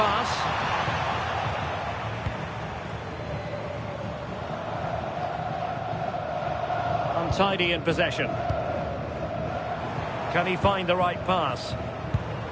Untidy in possession. Can he find the right pass?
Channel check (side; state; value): both; identical; correlation 1.00